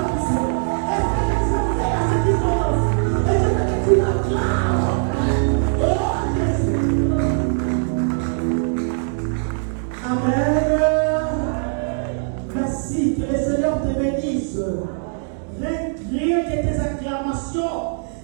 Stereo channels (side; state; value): left; silent; digital silence